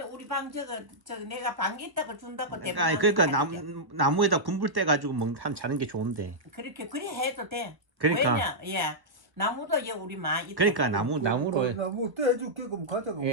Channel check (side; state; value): left; late; 1.1 ms